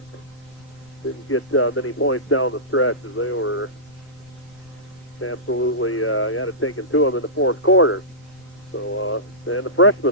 didn't get many points down the stretch as they were absolutely had it taken to them in the fourth quarter. So, and the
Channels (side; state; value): left; noise; rumble, 27 dB below the sound